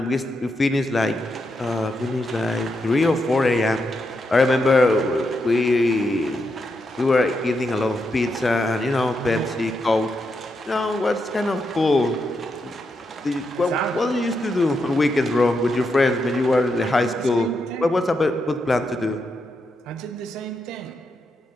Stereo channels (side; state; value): both; normal; correlation 0.83